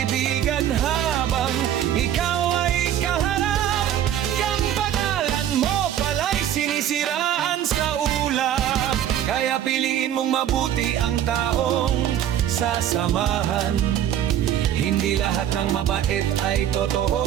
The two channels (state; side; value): quieter; left; 10.8 dB